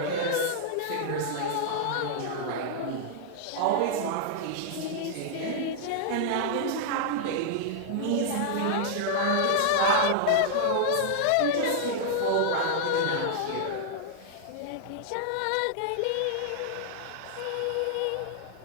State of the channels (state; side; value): different; both; correlation -0.01